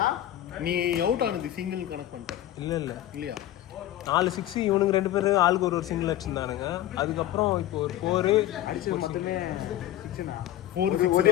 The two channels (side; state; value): right; quieter; 13.2 dB